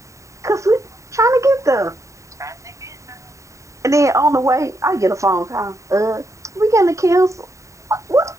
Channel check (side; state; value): left; late; 0.15 ms